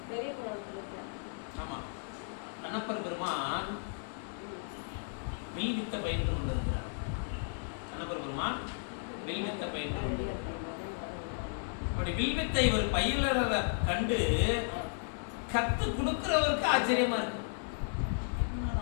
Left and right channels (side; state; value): right; silent; digital silence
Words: ஆமா, கண்ணப்பர் பெருமான் வில்வித்த பயின்று கொண்டிருக்கிறார். கண்ணப்பர் பெருமான் வில்வித்த பயின்று கொண்டிருக்கிறார். அப்படி வில்வித்தை ஒரு பயிலரை கண்டு கத்து கொடுக்கிறவருக்கு ஆச்சரியமா இருக்கு.